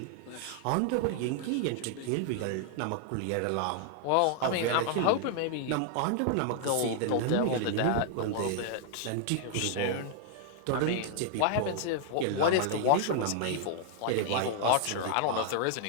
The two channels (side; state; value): both; different; correlation -0.01